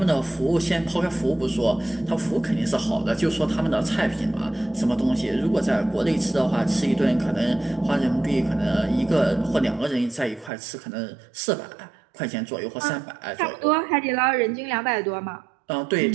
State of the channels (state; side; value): drops out; left; at 10.5 s